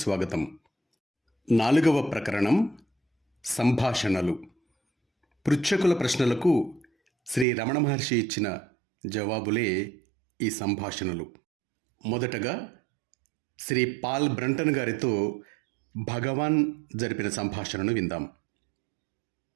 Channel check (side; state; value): left; drops out; at 7.5 s